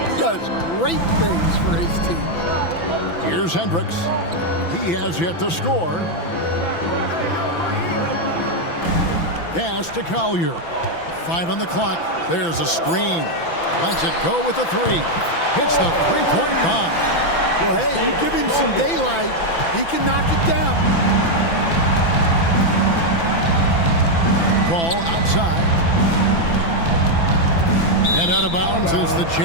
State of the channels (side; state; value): right; late; 6.0 ms